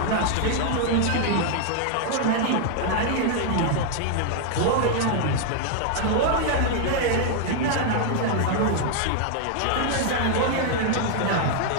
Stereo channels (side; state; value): both; different; correlation 0.00